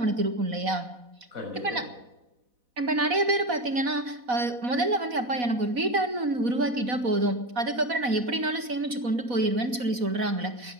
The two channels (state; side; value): late; left; 4.1 ms